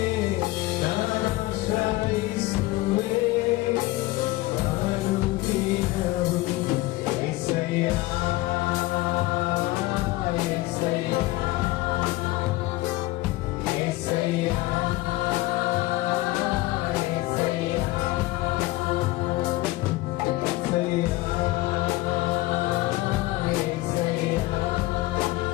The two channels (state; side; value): quieter; right; 19.0 dB